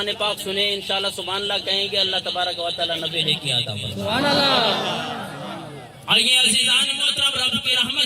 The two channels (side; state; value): both; identical; correlation 1.00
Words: پاک سنیں انشاءاللہ سبحان اللہ کہیں گے اللہ تبارک و تعالی نبی نے کیا عطا فرمائے سبحان اللہ آئیے عزیزان محترم رب کی